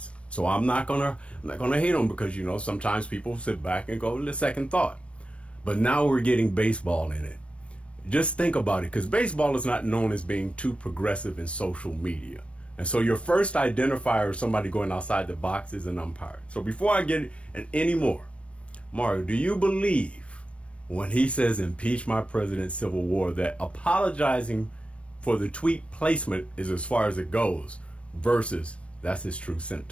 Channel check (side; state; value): right; late; 0.061 ms